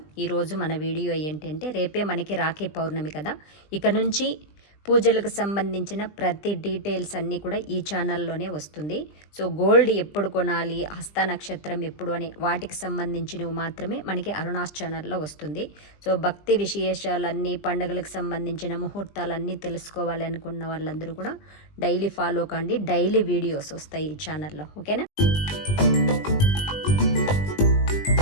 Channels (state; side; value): late; right; 20 ms